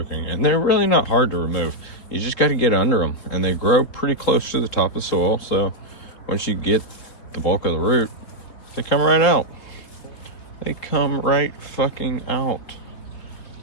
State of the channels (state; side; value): late; right; 3.8 ms